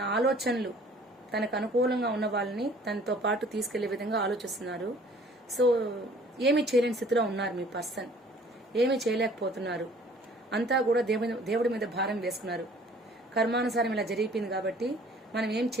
ఆలోచనలు తనకు అనుకూలంగా ఉన్న వాళ్ళని తనతో పాటు తీసుకెళ్లే విధంగా ఆలోచిస్తున్నారు. సో ఏమీ చేయలేని స్థితిలో ఉన్నారు మీ పర్సన్, ఏమీ చేయలేకపోతున్నారు. అంతా కూడా దేవుడి మీద భారం వేసుకున్నారు. కర్మానుసారం ఇలా జరిగిపోయింది కాబట్టి మనం ఏం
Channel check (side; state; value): both; normal; correlation 0.53